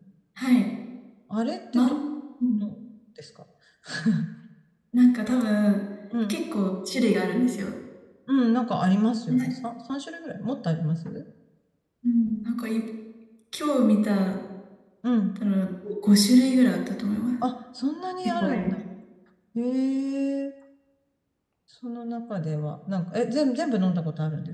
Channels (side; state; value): both; identical; correlation 1.00